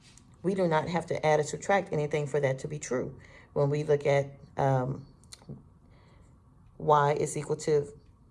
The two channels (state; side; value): identical; both; correlation 1.00